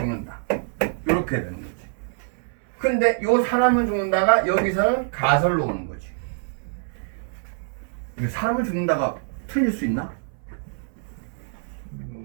이렇게 되는 거지. 근데 요 사람은 죽는다가 여기서는 가설로 오는 거지. 이게 사람은 죽는다가 틀릴 수 있나?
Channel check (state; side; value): silent; left; 59 dB below the other